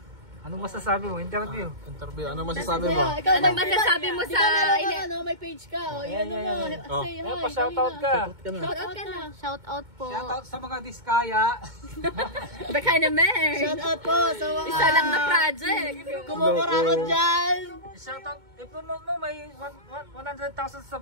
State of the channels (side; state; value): left; late; 2.2 ms